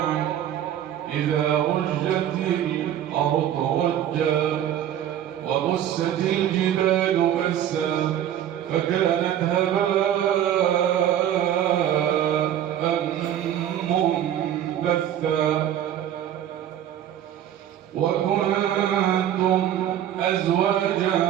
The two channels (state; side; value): quieter; left; 10.9 dB